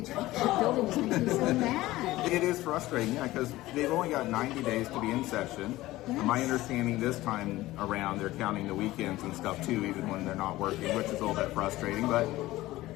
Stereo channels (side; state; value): right; quieter; 17.3 dB